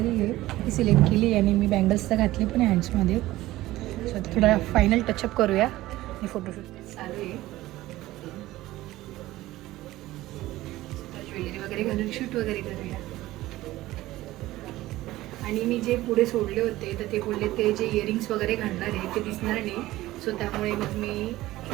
आहे ती सिलेक्ट केली आणि मी बँगल्स तर घातले पण आहे हँड्समध्ये. आता थोडा फायनल टचअप करूया आणि फोटोशूट चालू आहे. ज्वेलरी वगैरे घालून शूट वगैरे करूया. आणि मी जे पुढे सोडले होते तर ते बोलले ते जे इयरिंग्स वगैरे घालणार आहे ते दिसणार नाही. त्यामुळे मग मी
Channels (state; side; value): quieter; left; 16.7 dB